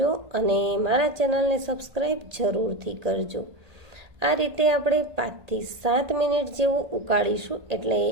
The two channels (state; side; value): late; left; 1.9 ms